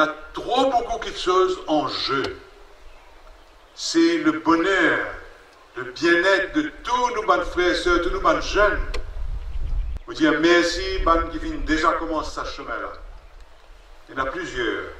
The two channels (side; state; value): both; identical; correlation 1.00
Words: trop beaucoup de choses en jeu. C'est le bonheur, le bien-être de tous nos bonnes frères et sœurs, tous nos bonnes jeunes. Vous dire merci, ban qui viennent déjà commencer ce chemin-là. Il y en a plusieurs.